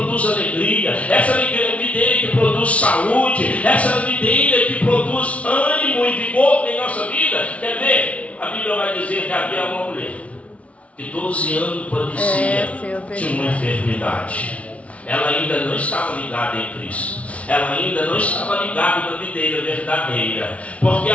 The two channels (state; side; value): late; right; 0.064 ms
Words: alegria, essa videira que produz saúde, essa videira que produz ânimo e vigor em nossa vida. Quer ver? A Bíblia vai dizer que havia uma mulher que 12 anos padecia de uma enfermidade. Ela ainda não estava ligada em Cristo. Ela ainda não estava ligada na videira verdadeira. Porque,